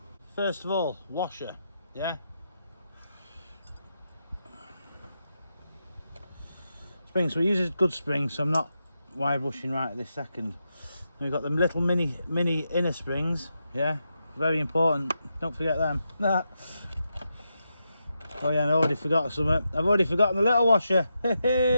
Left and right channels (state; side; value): inverted; both; correlation -0.85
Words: First of all, washer. Yeah. Spring. So we use a good spring, so I'm not wire brushing right at this second. And we've got them little mini inner springs. Yeah, very important, don't forget them. Oh yeah, and I already forgot something. I've already forgotten the little washer.